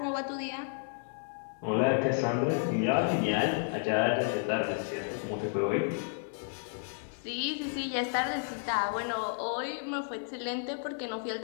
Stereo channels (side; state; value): right; silent; 56 dB below the other